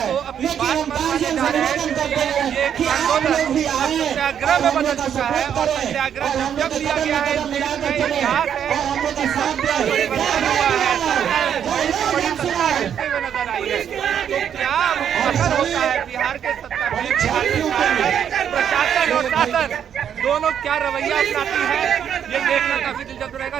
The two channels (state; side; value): quieter; left; 8.8 dB